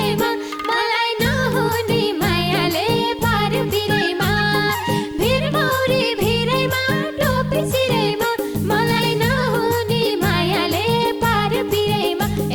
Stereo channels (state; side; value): identical; both; correlation 1.00